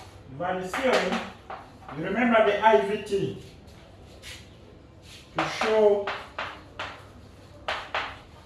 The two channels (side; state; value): both; identical; correlation 1.00